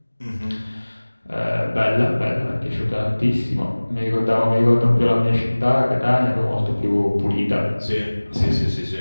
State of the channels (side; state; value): both; inverted; correlation -1.00